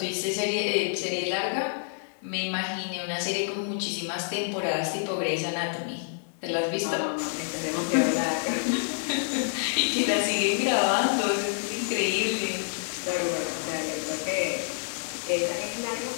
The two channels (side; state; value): right; silent; digital silence